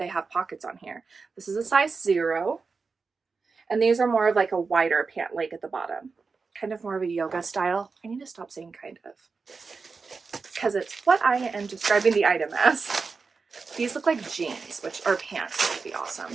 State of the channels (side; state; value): left; quieter; 4.7 dB